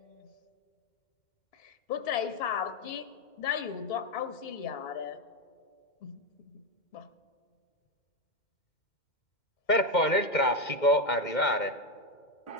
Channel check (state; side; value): late; right; 2.1 ms